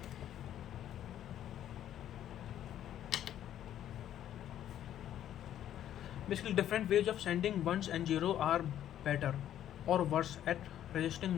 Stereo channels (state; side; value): quieter; right; 11.2 dB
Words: Basically, different ways of sending ones and zero are better or worse at resisting